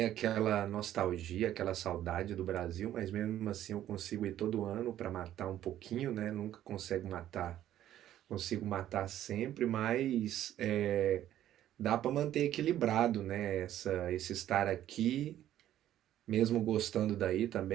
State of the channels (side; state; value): left; quieter; 12.2 dB